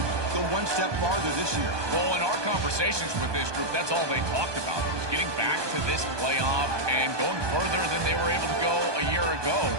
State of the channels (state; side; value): late; left; 1.2 ms